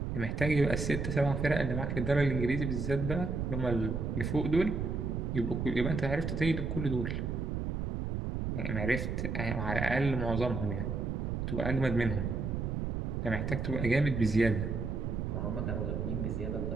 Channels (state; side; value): noise; right; rumble, 2 dB below the sound